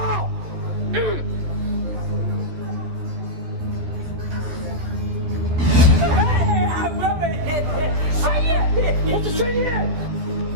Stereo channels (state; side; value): late; left; 13 ms